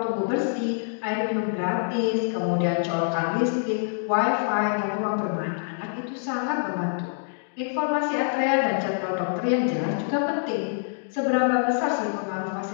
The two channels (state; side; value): silent; right; digital silence